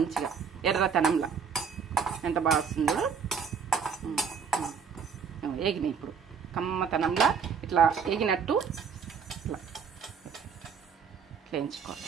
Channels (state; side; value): quieter; left; 6.4 dB